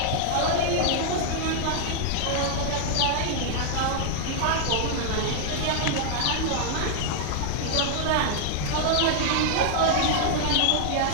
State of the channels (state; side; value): different; both; correlation -0.01